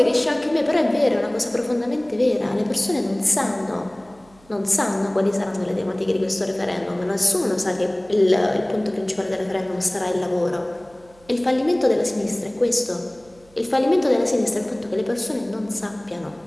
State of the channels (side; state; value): right; noise; hum, 28 dB below the sound